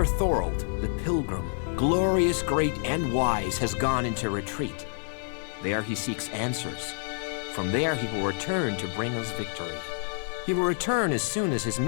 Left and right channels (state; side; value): silent; right; 56 dB below the other